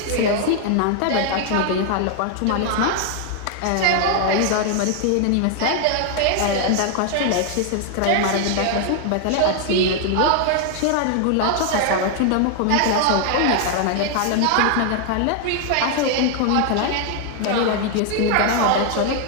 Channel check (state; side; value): different; both; correlation 0.00